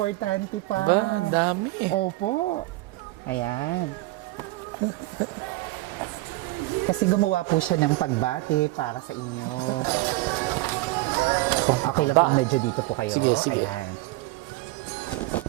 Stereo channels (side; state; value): left; quieter; 19.4 dB